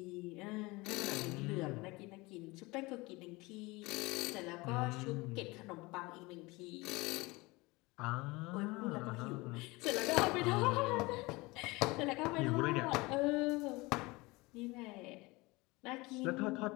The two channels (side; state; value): right; quieter; 23.2 dB